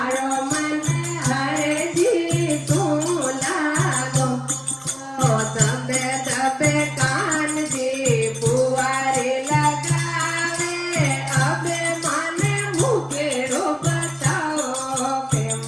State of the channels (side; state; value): both; identical; correlation 1.00